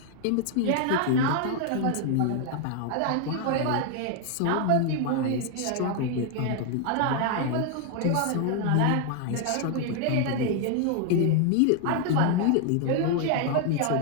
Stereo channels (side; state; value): both; different; correlation 0.00